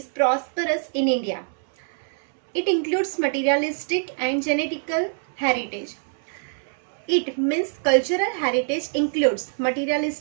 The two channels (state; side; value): silent; left; 62 dB below the other